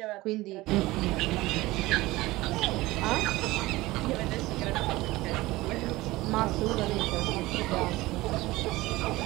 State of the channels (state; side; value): quieter; left; 19.3 dB